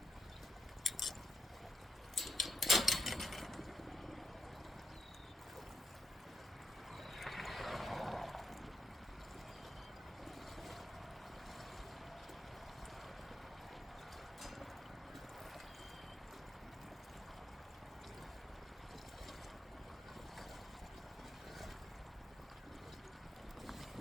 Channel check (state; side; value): normal; both; correlation 0.82